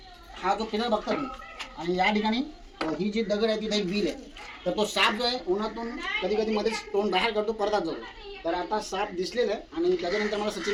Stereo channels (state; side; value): identical; both; correlation 1.00